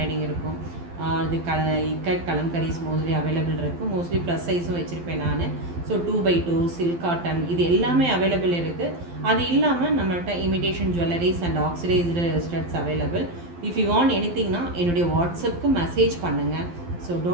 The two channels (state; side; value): late; left; 12 ms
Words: இருக்கும். அது இக்கட் கலம்கரிஸ் மோஸ்ட்லி அவைலபிள் இருக்குது. மோஸ்ட்லி ப்ளஸ் சைஸும் வச்சுருப்பேன் நான். ஸோ 2x2 சில்க் காட்டன் இது எல்லாமே அவைலபிள் இருக்குது. அது இல்லாமல் நம்மள்கிட்ட imitation jewelleries and oxidised studs available. If you want எனிதிங்னா என்னுடைய வாட்ஸ்அப்புக்கு மெசேஜ் பண்ணுங்கள். So